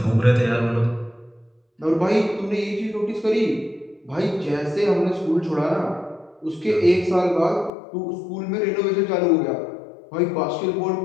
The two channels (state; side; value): drops out; right; at 7.7 s